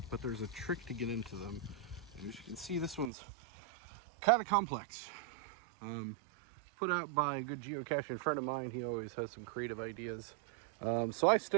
but there's a trick to get into them. And as you can see, this one's kind of complex. Put out by a good geocaching friend of mine. He always has some creative ideas. So I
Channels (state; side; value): drops out; left; at 3.1 s